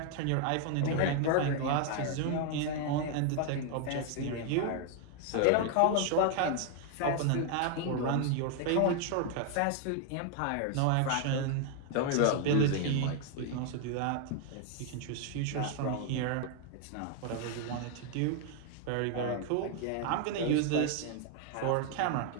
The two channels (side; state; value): both; different; correlation 0.00